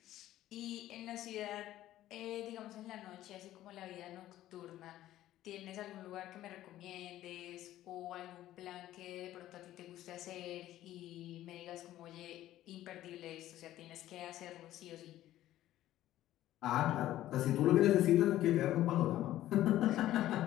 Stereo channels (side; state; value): right; quieter; 13.9 dB